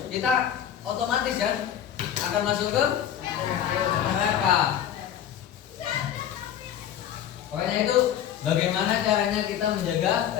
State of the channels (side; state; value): right; quieter; 10.1 dB